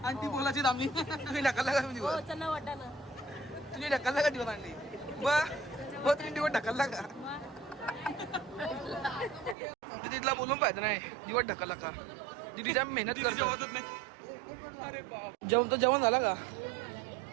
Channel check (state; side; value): drops out; left; at 9.6 s